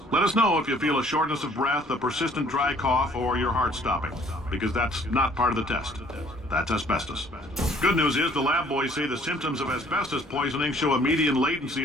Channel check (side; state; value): both; normal; correlation 0.59